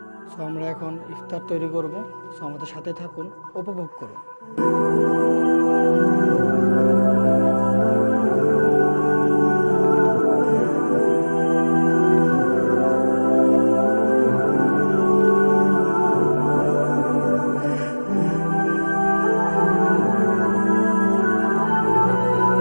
সো আমরা এখন ইফতার তৈরি করব। সো আমাদের সাথে থাকুন, উপভোগ করুন।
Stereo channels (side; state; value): both; inverted; correlation -1.00